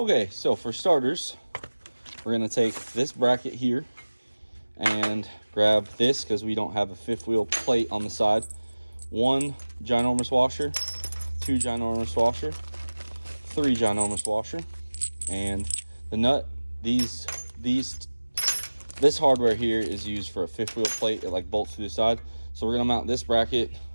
so for starters, we're gonna take this bracket here and grab this because we don't have a fifth wheel plate on the side. One ginormous washer, two ginormous washer, three ginormous washer, and the nut. This hardware here is used for a fifth wheel plate. It like bolts to the side. So we're gonna mount this bracket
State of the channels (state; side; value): inverted; both; correlation -1.00